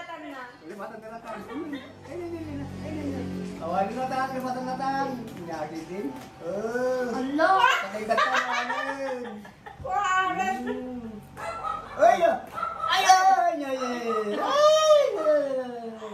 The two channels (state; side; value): identical; both; correlation 1.00